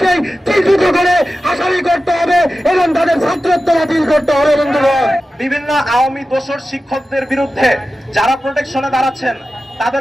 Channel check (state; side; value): normal; both; correlation 0.94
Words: চিহ্নিত করে আসামি করতে হবে এবং তাদের ছাত্রত্ব বাতিল করতে হবে। বন্ধুগণ, বিভিন্ন আওয়ামী দোসর শিক্ষকদের বিরুদ্ধে যারা প্রোটেকশনে দাঁড়াচ্ছেন